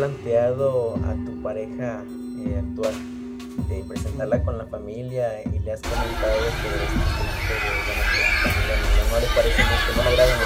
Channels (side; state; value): both; identical; correlation 1.00